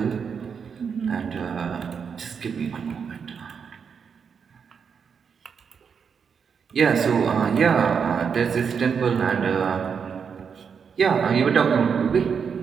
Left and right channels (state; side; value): quieter; left; 6.5 dB